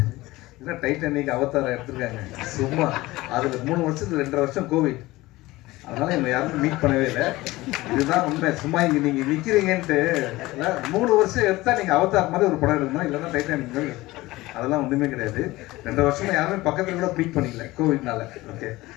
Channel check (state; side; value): quieter; right; 19.2 dB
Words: இல்லை டைட்டானிக், அவதாரம் எடுத்துருக்காங்க சும்மா. அதில் 3 வருஷத்துக்கு 2.5 வருஷம் கோவிட், அதனால என்னை யாரும் மீட் பண்ணவே இல்லை. இதுதான் உண்மை. சும்மா இங்கே நீங்கள் நிற்கிறீங்கன்ட்டு இல்லை, 3 வருஷம் எடுத்தால் நீங்கள் அவதார் மாதிரி ஒரு படம் எடுக்கணும், இல்லைன்னா டைட்டானிக் மாதிரி. அதெல்லாம் ஒன்றுமே கிடையாது. 2.5 வருஷமா யாருமே பக்கத்தில் கூட மீட் பண்ணிக்கல கோவிட்னால. ஓகே,